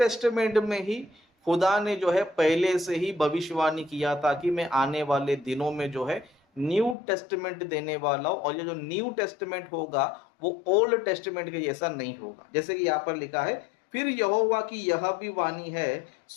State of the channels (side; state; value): right; drops out; at 7.0 s